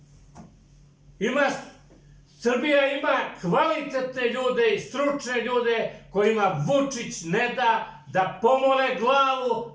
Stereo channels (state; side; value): identical; both; correlation 1.00